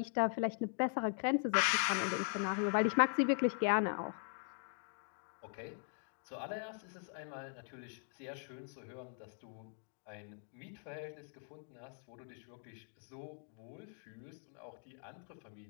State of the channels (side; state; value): right; silent; 51 dB below the other